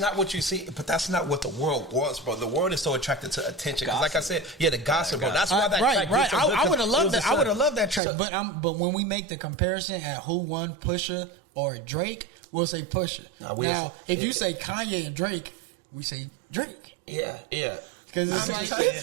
what you see, but that's not what the world wants, bro. The world is so attracted to attention. Because like I said, the gossip, bro. That's why that track. Right. I would have loved that. I would have loved that track. But when we make the comparison at who won, Pusha or Drake, we'll say Pusha. Now, if you say Kanye and Drake, we say Drake. Yeah. Because it's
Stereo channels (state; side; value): drops out; left; at 8.0 s